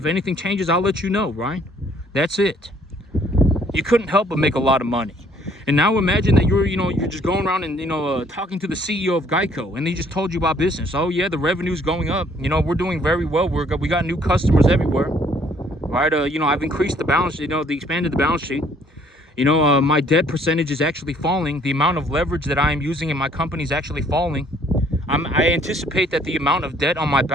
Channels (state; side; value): normal; both; correlation 0.61